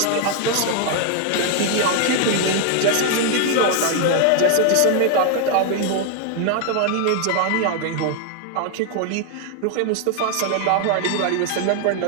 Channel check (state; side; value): different; both; correlation 0.00